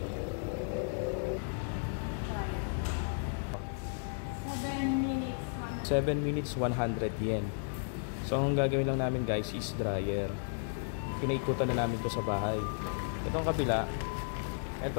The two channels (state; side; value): silent; right; digital silence